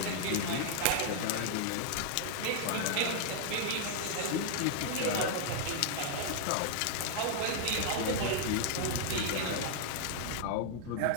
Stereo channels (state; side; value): different; both; correlation -0.01